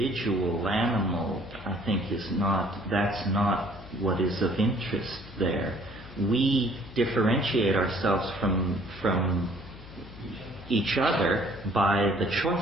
animal, I think, that's not what is of interest there. We differentiate ourselves from each other by the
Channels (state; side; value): noise; left; hum, 17 dB below the sound